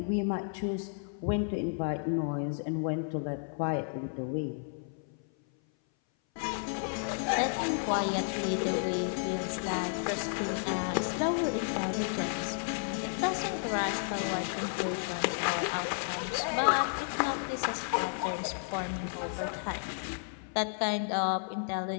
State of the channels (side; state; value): right; silent; 56 dB below the other